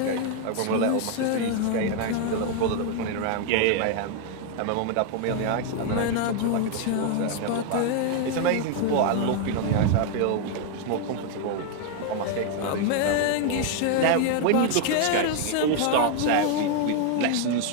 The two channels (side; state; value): both; different; correlation 0.00